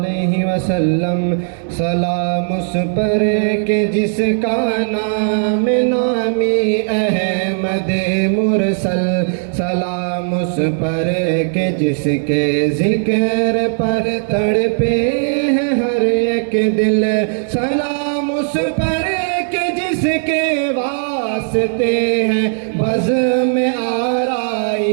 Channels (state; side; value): silent; left; digital silence